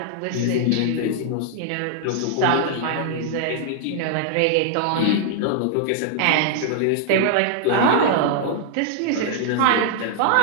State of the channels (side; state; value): both; different; correlation -0.01